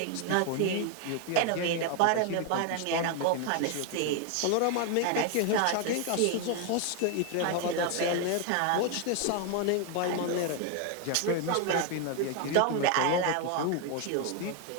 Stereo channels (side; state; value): both; different; correlation 0.01